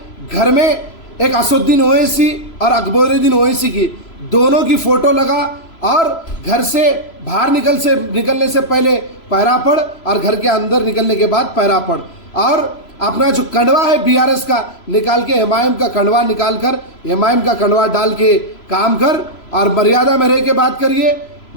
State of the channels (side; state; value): right; late; 3.0 ms